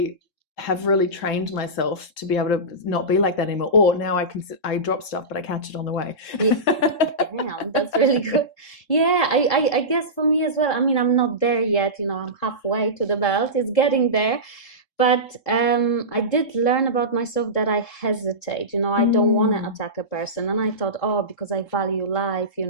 have really trained myself to be able to not be like that anymore. Or now I drop stuff, but I catch it on the way. Damn, that's really good. Yeah, I guess for me as well. I mean, I'm not there yet, I'm halfway to the belt. It's getting there. But I did learn about myself that I hesitate, I don't want to attack a person. And I thought, because I value life,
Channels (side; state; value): right; late; 3.7 ms